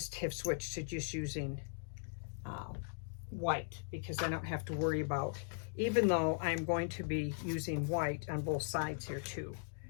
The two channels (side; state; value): right; silent; digital silence